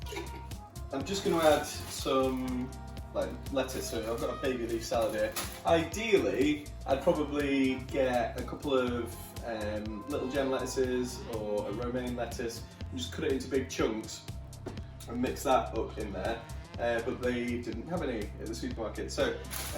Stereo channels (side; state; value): both; identical; correlation 1.00